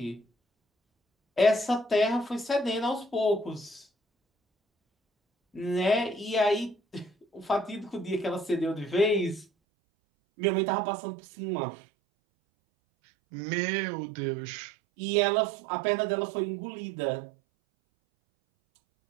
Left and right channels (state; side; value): drops out; left; at 9.5 s